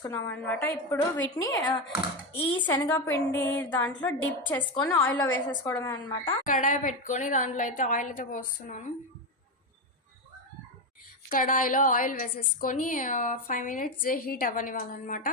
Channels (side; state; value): both; normal; correlation 0.12